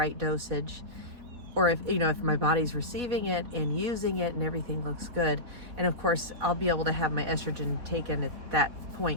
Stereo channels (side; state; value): left; late; 4.1 ms